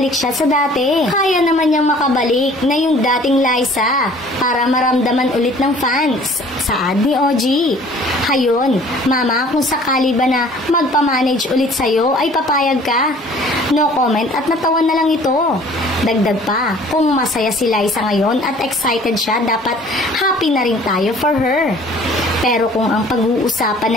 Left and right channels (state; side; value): normal; both; correlation 0.52